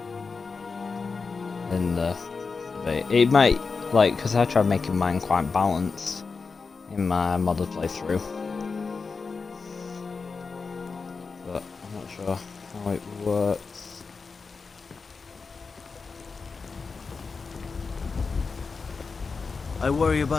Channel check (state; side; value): quieter; right; 4.7 dB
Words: In the debate. It might, like, because I tried making mine quite balanced in my modded playthrough. But I'm not sure how it works. I worry